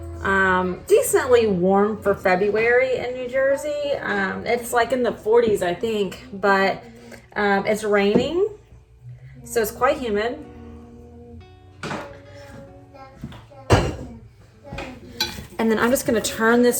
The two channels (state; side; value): identical; both; correlation 1.00